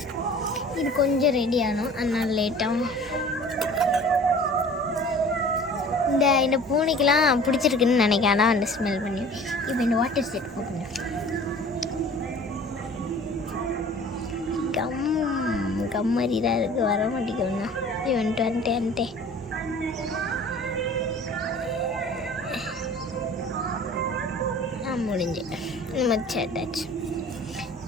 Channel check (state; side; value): normal; both; correlation 0.46